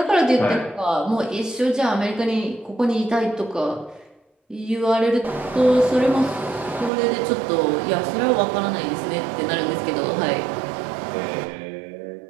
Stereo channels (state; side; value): drops out; left; at 6.9 s